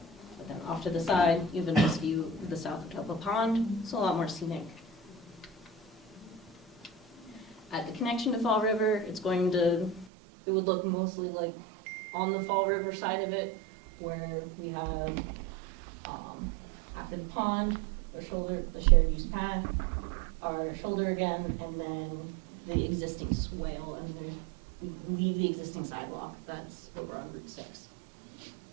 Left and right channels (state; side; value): drops out; left; at 10.1 s